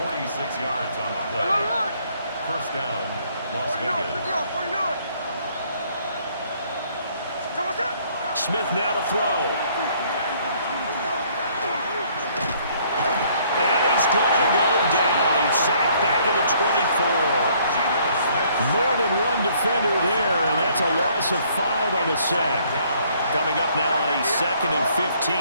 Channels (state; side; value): inverted; both; correlation -0.63